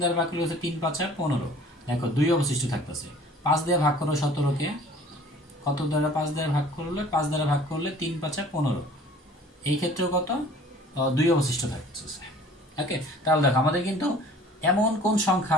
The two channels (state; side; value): normal; both; correlation 0.49